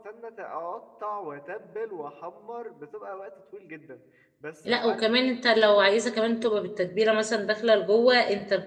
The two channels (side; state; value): both; identical; correlation 1.00